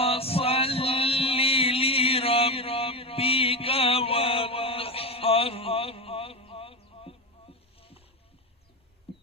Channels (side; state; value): both; normal; correlation 0.18